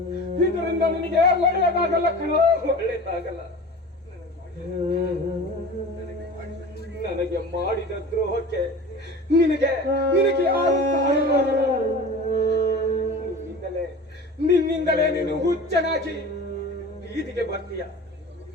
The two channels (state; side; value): normal; both; correlation 0.36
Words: ಇದರಿಂದ ನಿನಗೆ ಒಳ್ಳೆಯದಾಗಲ್ಲ ಕಣೋ, ಒಳ್ಳೆಯದಾಗಲ್ಲ. ನನಗೆ ಮಾಡಿದ ದ್ರೋಹಕ್ಕೆ ನಿನಗೆ ಯಾರು ಸಹಾಯ ಮಾಡಲ್ಲ. ನಿನ್ನಿಂದಲೇ ನೀನು ಹುಚ್ಚನಾಗಿ ಬೀದಿಗೆ ಬರ್ತೀಯ.